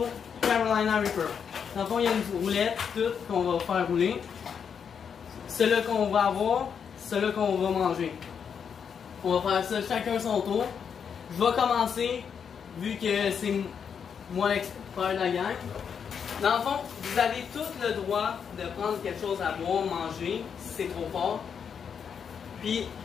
Carolina Reaper. Dans le fond, il y a une roulette, toute, qu'on va faire rouler. Ceux-là qu'on va avoir, ceux-là qu'on va manger. On va faire ça chacun son tour. Je vais commencer, vu que c'est moi l'expert de la gang. Dans le fond, vous avez tout le droit de prendre quelque chose à boire, manger, si c'est trop fort. Puis,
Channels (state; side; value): quieter; right; 7.1 dB